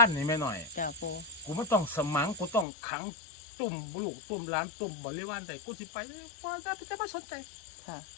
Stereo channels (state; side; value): drops out; right; at 2.7 s